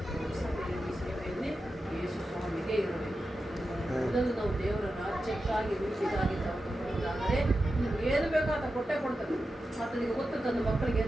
ನಮ್ಮ ಸಭೆಯಲ್ಲಿ, ಸೇವೆಯಲ್ಲಿ ಯೇಸು ಸ್ವಾಮಿಗೆ ಇರಬೇಕು. ಮೊದಲು ನಾವು ದೇವರ ರಾಜ್ಯಕ್ಕಾಗಿ, ನೀತಿಗಾಗಿ ತಗೊಂಡಾದರೆ ನೀವು ಏನು ಬೇಕೋ ಆತ ಕೊಟ್ಟೇ ಕೊಡ್ತಾರೆ. ಆತನಿಗೆ ಗೊತ್ತು ತನ್ನ ಮಕ್ಕಳಿಗೆ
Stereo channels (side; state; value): both; normal; correlation 0.91